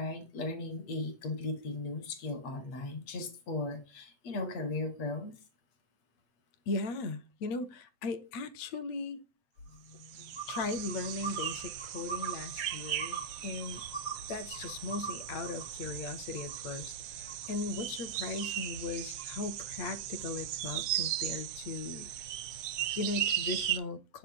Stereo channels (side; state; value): right; late; 7.6 ms